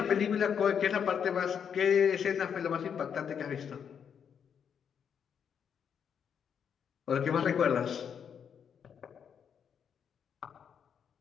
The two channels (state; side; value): quieter; right; 7.6 dB